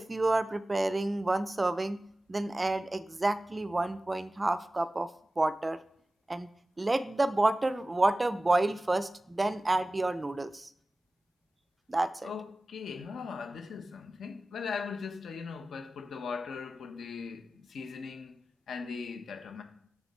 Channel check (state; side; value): normal; both; correlation 0.96